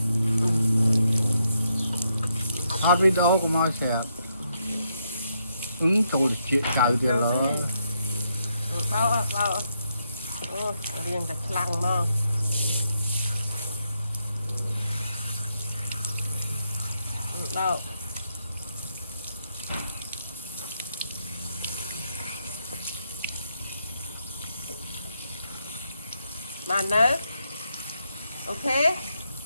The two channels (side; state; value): both; inverted; correlation -0.79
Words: hot video của moi sẽ ứng tụ được chuyện trời thì là bao ô riêng cả lăng mà đâu bạn nữa ok